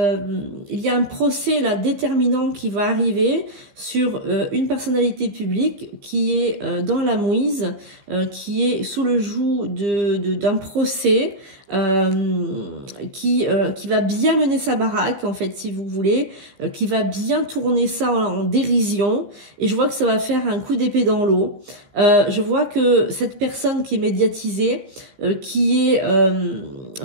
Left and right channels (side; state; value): left; late; 15 ms